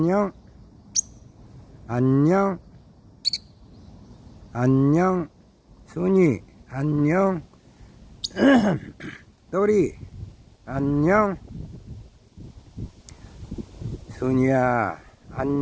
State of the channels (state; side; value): identical; both; correlation 1.00